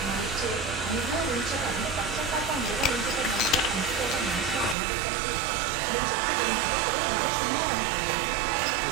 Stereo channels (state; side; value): drops out; left; at 4.8 s